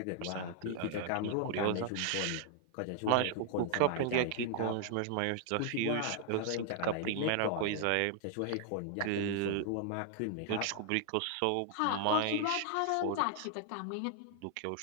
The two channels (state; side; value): different; both; correlation 0.00